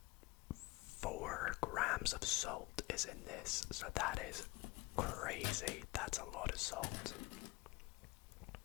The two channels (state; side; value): quieter; right; 21.9 dB